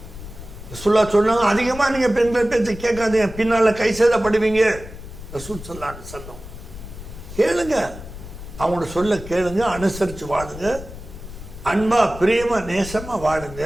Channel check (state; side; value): noise; left; rumble, 13 dB below the sound